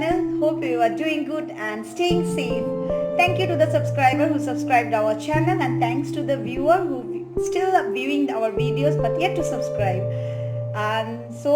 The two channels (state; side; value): identical; both; correlation 1.00